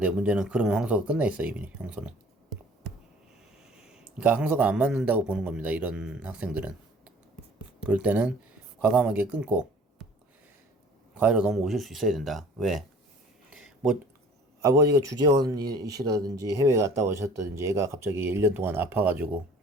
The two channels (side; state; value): both; normal; correlation 0.50